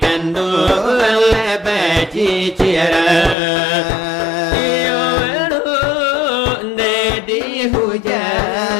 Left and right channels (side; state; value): right; drops out; at 3.4 s